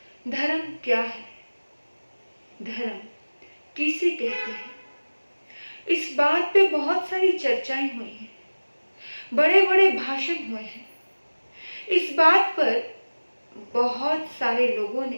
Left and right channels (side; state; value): both; inverted; correlation -1.00